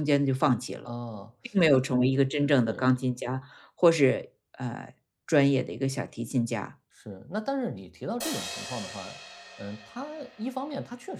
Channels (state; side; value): identical; both; correlation 1.00